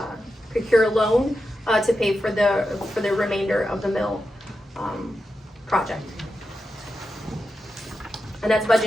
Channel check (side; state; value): both; normal; correlation 0.89